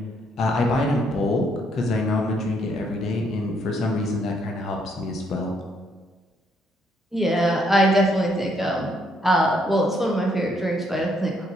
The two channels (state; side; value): normal; both; correlation 0.71